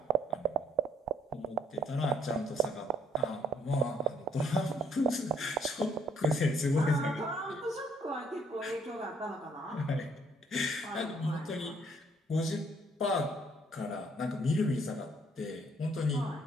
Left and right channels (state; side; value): normal; both; correlation 0.65